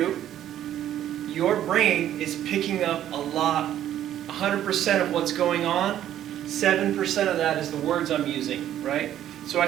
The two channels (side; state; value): left; quieter; 11.5 dB